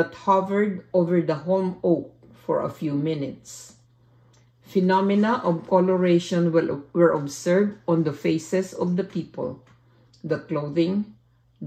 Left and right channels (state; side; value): identical; both; correlation 1.00